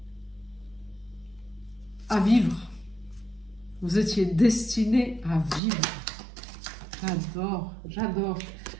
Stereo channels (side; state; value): left; drops out; at 5.6 s